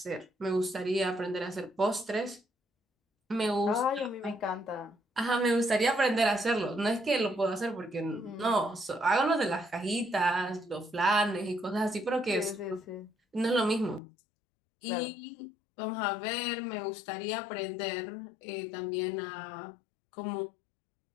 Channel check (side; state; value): right; drops out; at 14.0 s